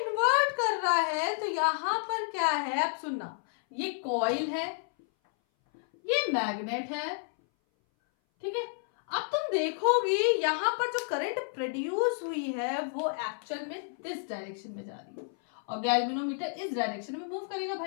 कर रहा है तो यहां पर क्या है, अब सुनना, ये कॉइल है, ये मैग्नेट है, ठीक है। अब तुम देखोगी यहां पर जो करंट प्रोड्यूस हुई है वो एक्चुअल में दिस डायरेक्शन में जा रही है और गैल्वेनोमीटर इस डायरेक्शन में मूव करेगा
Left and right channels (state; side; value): silent; right; 57 dB below the other